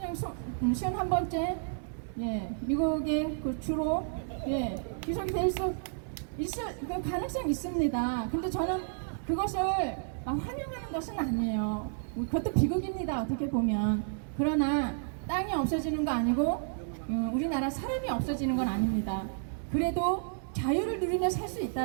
51번째 예, 미국의 그 주로 예, 기속이 될 수 있을 그 가능성이 있습니다. 근데 저는 그것을 환영하는 것은 아니에요. 그것도 비극입니다. 어떻게 보면. 그러나 땅이 없어지는 거 아니고 우리나라 사람이 없어지는 건 아닙니다. 그래도 자유를 누리며 살 수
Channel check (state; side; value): silent; left; digital silence